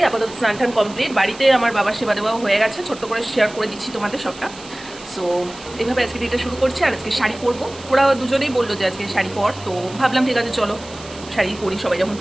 আপাতত স্নান টান কমপ্লিট। বাড়িতে আমার বাবার সেবা দেওয়াও হয়ে গেছে, ছোট্ট করে শেয়ার করে দিচ্ছি তোমাদের সবটা। সো এইভাবে আজকে দিনটা শুরু করছি। আর আজকে শাড়ি পরবো, ওরা দুজনেই বললো যে আজকে শাড়ি পর। তো ভাবলাম ঠিক আছে চলো শাড়ি পরি, সবাই যখন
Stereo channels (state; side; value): noise; right; hiss, 18 dB below the sound